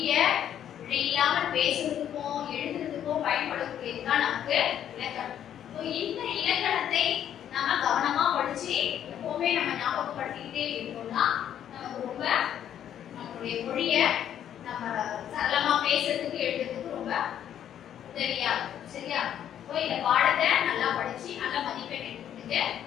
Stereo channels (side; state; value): right; quieter; 10.1 dB